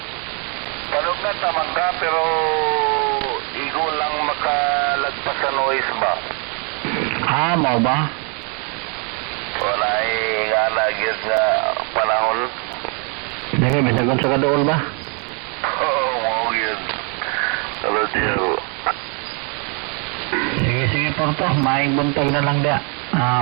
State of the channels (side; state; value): left; quieter; 37.1 dB